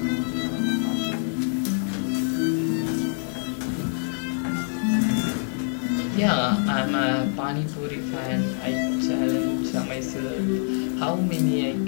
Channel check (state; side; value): silent; right; 61 dB below the other